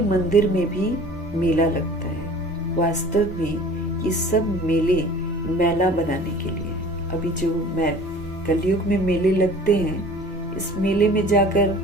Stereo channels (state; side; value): normal; both; correlation 0.45